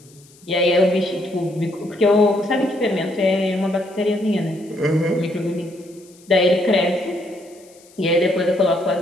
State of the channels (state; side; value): noise; left; hiss, 27 dB below the sound